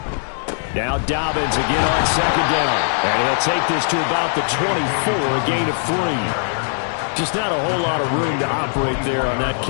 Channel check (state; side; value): silent; right; digital silence